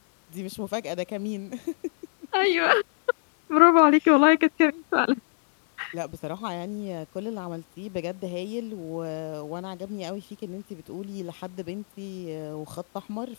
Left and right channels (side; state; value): right; silent; digital silence